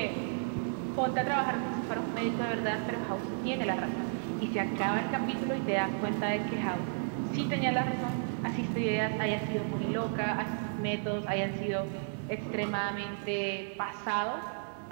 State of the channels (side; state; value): left; silent; 56 dB below the other